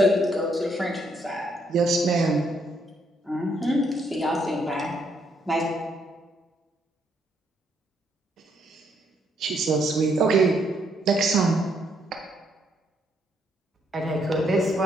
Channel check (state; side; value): normal; both; correlation 0.73